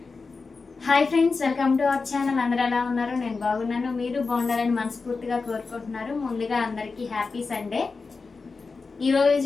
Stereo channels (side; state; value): right; quieter; 4.4 dB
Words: Hi friends, welcome to our channel. అందరూ ఎలా ఉన్నారు? నేను బాగున్నాను, మీరు బాగుండాలని మనస్ఫూర్తిగా కోరుకుంటున్నారు. ముందుగా అందరికీ హ్యాపీ సండే.